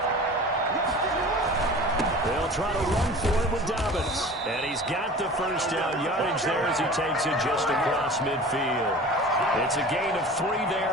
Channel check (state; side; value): normal; both; correlation 0.39